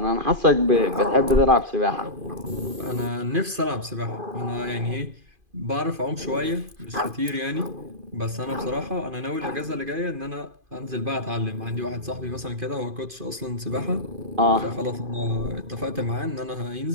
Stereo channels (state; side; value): late; left; 2.5 ms